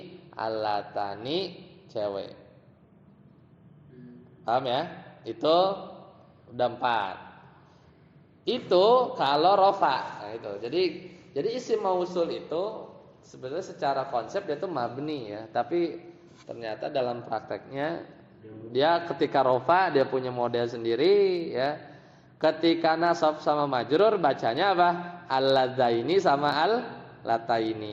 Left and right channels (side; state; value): both; identical; correlation 1.00